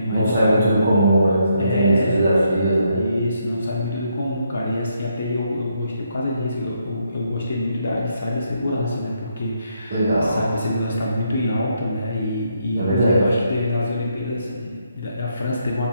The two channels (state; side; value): inverted; both; correlation -0.76